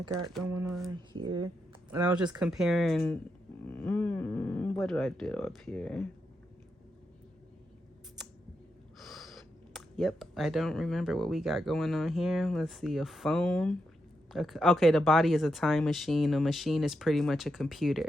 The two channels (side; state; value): both; normal; correlation 0.84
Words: got going on here. And I was just comparing, what do I do up here? Yep, I don't remember what we got going on here. Let's see, a phone. Okay, the body is a time machine. A machine is pretty much a